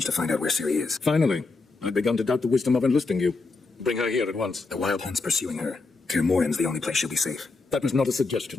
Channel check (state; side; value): quieter; right; 3.8 dB